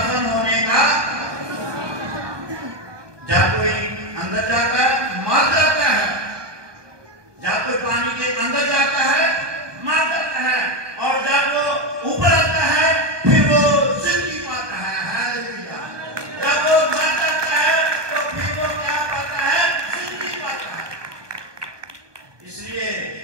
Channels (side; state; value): left; late; 1.2 ms